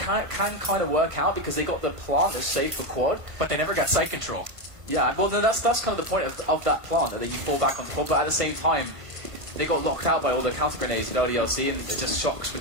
kind of work out because they got the plant that's safe for quad. But they never got site control. Yeah, well, that's kind of the point of that plant, that you fall back on the quad. But at the same time, they got locked out by all the counter grenades at LDLC, and it just Shocks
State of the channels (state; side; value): late; left; 1.5 ms